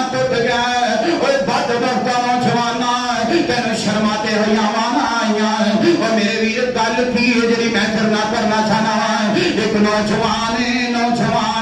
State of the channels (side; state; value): both; identical; correlation 1.00